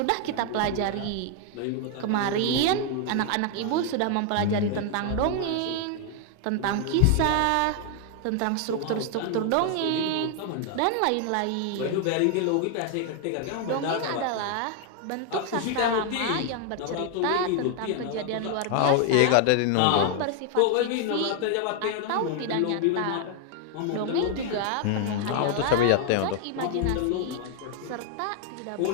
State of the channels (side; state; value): both; different; correlation 0.00